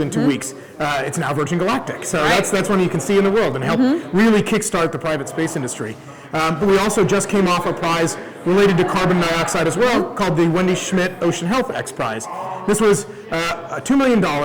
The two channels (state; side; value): identical; both; correlation 1.00